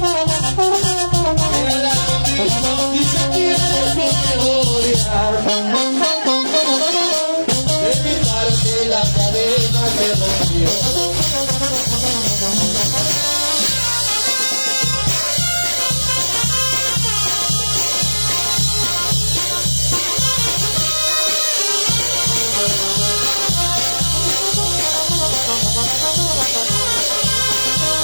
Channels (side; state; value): both; inverted; correlation -1.00